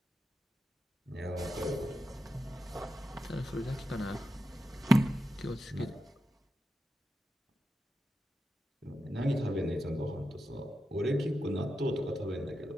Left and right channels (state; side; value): normal; both; correlation 0.89